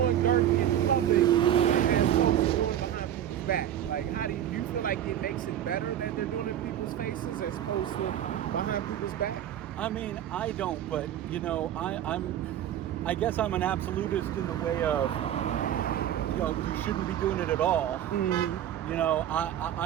dirt in public as opposed to doing it behind people's back? Like, how do you feel like it makes it better that they're doing it in people's faces as opposed to behind people's back? I mean, I don't, but you know, I guess I'm an absolutist in the way of, you know, you shouldn't be doing it at all. Mm-hmm. You know,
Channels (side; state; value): left; quieter; 10.9 dB